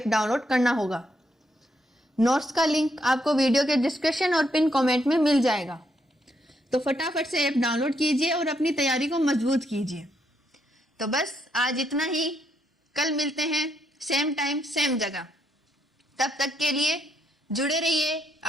डाउनलोड करना होगा। नोट्स का लिंक आपको वीडियो के डिस्क्रिप्शन और पिन कमेंट में मिल जाएगा। तो फटाफट से ऐप डाउनलोड कीजिए और अपनी तैयारी को मजबूत कीजिए। तो बस आज इतना ही, कल मिलते हैं सेम टाइम सेम जगह। तब तक के लिए जुड़े रहिए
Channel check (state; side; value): normal; both; correlation 0.76